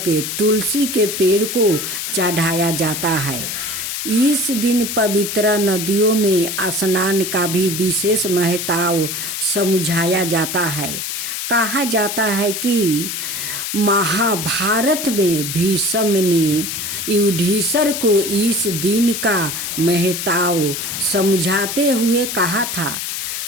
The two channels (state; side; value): noise; left; hiss, 4 dB below the sound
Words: तुलसी के पेड़ को चढ़ाया जाता है। इस दिन पवित्र नदियों में स्नान का भी विशेष महत्व समझाया जाता है। कहा जाता है कि महाभारत में भीष्म ने युधिष्ठिर को इस दिन का महत्व समझाते हुए कहा था